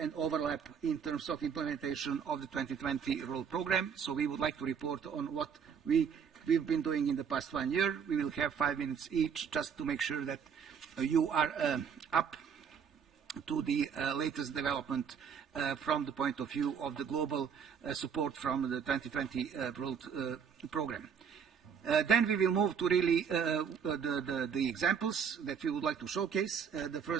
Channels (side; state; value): left; quieter; 7.1 dB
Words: and overlap in terms of implementation of the 2020 World Program. So we would like to report on what we've been doing in the past 1 year. We will have 5 minutes each just to make sure that you are up to the latest development from the point of view of the global support from the 2020 World Program. Then we will move to really the examples that we would like to showcase. The